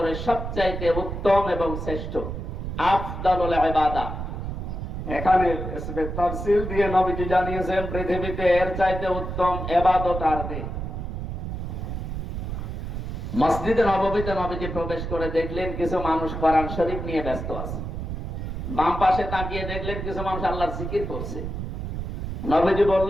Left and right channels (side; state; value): right; noise; rumble, 5 dB below the sound